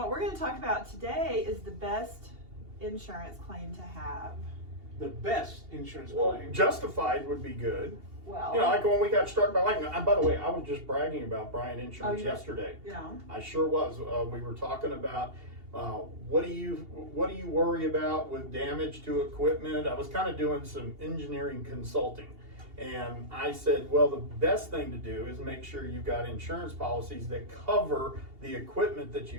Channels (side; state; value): left; late; 2.8 ms